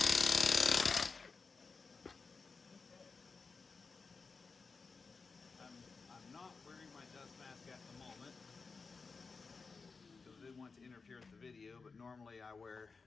I'm not wearing my dust mask at the moment because I didn't want to interfere with the video, but normally I wear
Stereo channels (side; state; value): right; quieter; 4.6 dB